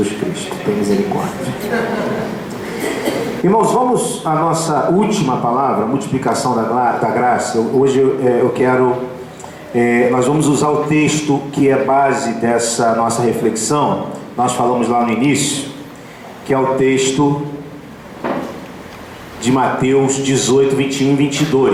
Cristo, tem misericórdia. Irmãos, vamos à nossa última palavra, multiplicação da graça. Hoje eu quero... nós vamos usar o texto que é base dessa nossa reflexão. Nós falamos lá no início, que é o texto de Mateus 18, 21 e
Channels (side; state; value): both; identical; correlation 1.00